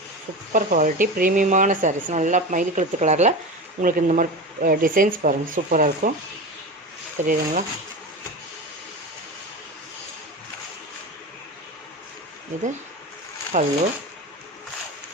சூப்பர் குவாலிட்டி ப்ரீமியமான சாரீஸ். நல்லா மயில் கழுத்து கலரில் உங்களுக்கு இந்த மாதிரி டிசைன்ஸ் பாருங்கள். சூப்பராக இருக்கும். தெரியுதுங்களா? இது பல்லு.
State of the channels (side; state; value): both; normal; correlation 0.26